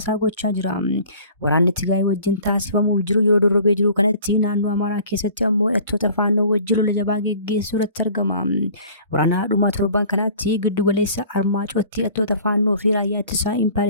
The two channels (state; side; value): inverted; both; correlation -0.48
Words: gochaa jira. Waraanni Tigraay wajjin taasifamuuf jiru yeroo dorrobee jiru kanatti naannoo Amaaraa keessatti ammoo hidhattoota faannoo wajjin lola jabaa geggeessuu irratti argama. Waraana dhumaa torban kanatti giddu galeessa Armaacootti hidhattoota faannoo fi raayyaa ittisaa